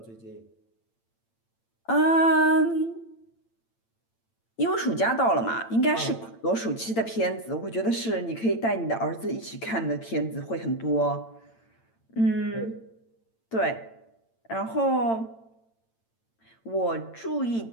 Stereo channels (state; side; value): late; right; 8.9 ms